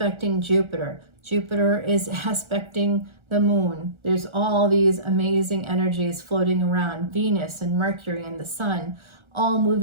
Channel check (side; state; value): left; late; 1.4 ms